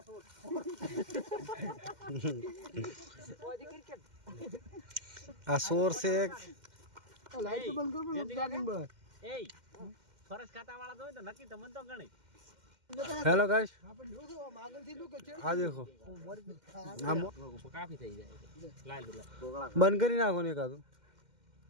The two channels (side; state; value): left; late; 2.1 ms